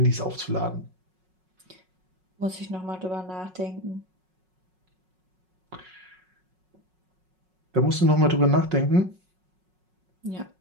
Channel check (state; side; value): late; left; 5.4 ms